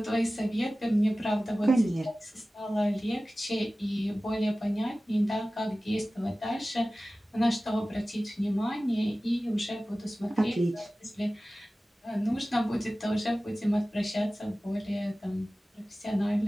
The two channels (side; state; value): both; normal; correlation 0.96